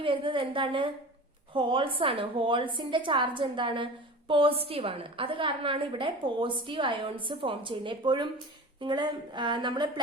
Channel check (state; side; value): normal; both; correlation 0.36